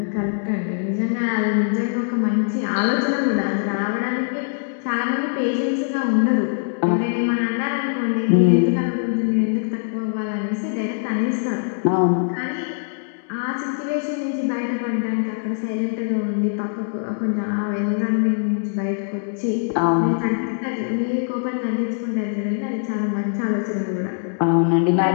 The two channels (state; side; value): silent; right; digital silence